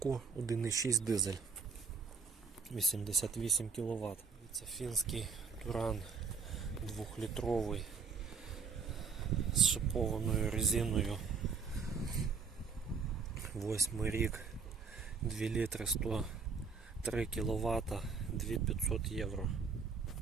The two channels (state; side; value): quieter; left; 5.3 dB